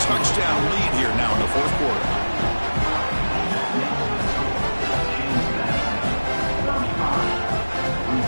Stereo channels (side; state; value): both; inverted; correlation -1.00